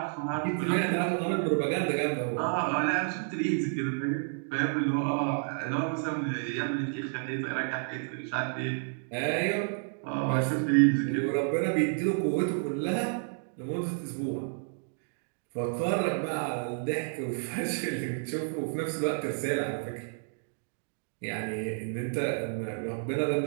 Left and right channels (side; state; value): left; silent; digital silence